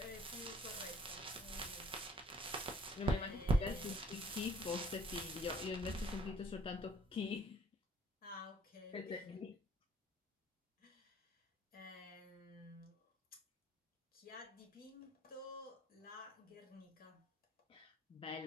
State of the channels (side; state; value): both; normal; correlation 0.59